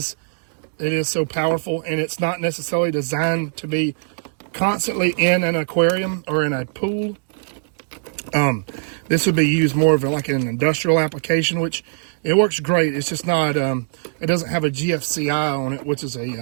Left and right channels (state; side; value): silent; left; digital silence